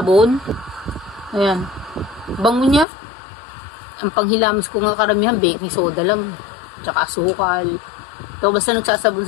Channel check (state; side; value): drops out; right; at 2.9 s